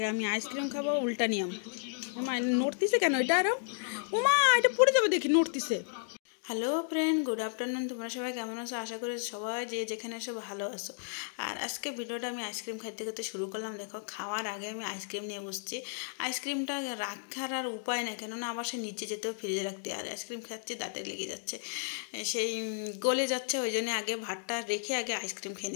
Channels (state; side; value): silent; right; digital silence